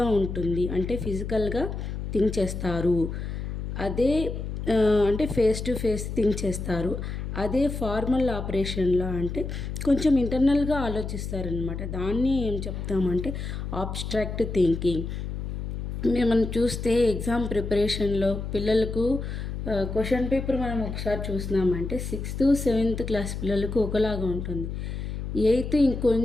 ఉంటుంది, అంటే ఫిజికల్గా థింక్ చేస్తారు. అదే అంటే ఫేస్ టు ఫేస్ థింక్ చేస్తారు. అదే ఫార్మల్ ఆపరేషన్లో అంటే కొంచెం ఇంటర్నల్గా ఆలోచిస్తారనమాట. దాన్ని ఏం చెప్తామంటే ఆబ్స్ట్రాక్ట్ థింకింగ్. మనం చూస్తే ఎగ్జామ్ ప్రిపరేషన్లో పిల్లలకు క్వశ్చన్ పేపర్ మనం ఒకసారి చూసినామంటే 6th 7th క్లాస్ పిల్లలకు ఒకలాగా ఉంటుంది. 8th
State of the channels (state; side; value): noise; left; hum, 5 dB below the sound